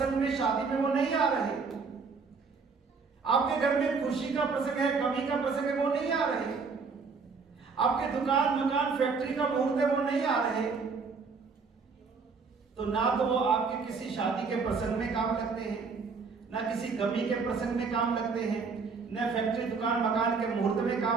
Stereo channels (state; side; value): quieter; left; 5.0 dB